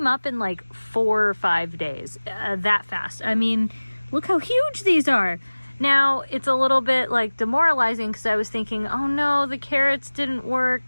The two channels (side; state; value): both; inverted; correlation -1.00